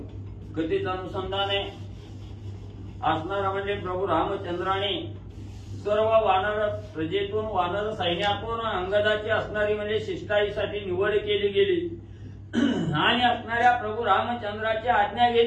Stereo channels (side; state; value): both; identical; correlation 1.00